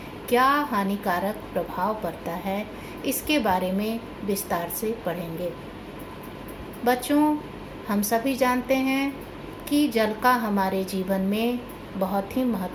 क्या हानिकारक प्रभाव पड़ता है, इसके बारे में विस्तार से पढ़ेंगे। बच्चों, हम सभी जानते हैं कि जल का हमारे जीवन में बहुत ही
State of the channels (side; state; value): both; identical; correlation 1.00